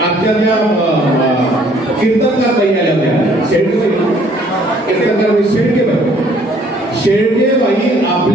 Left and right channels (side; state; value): both; normal; correlation 0.60